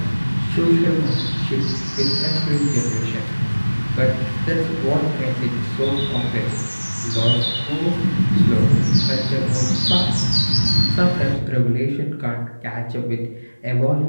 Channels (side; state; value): both; inverted; correlation -1.00